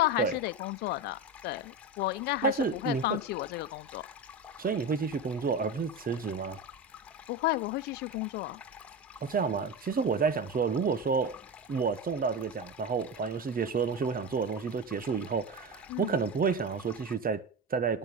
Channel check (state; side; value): normal; both; correlation 0.22